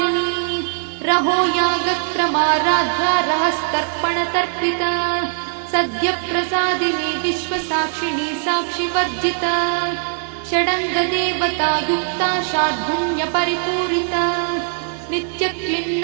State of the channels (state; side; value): silent; left; digital silence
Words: रहो यागक्रमाराध्या रहस्तर्पणतर्पिता सद्यप्रसादिनी विश्वसाक्षिणी साक्षिवर्जिता षडङ्गदेवतायुक्ता शार्दूल्यपरिपूरिता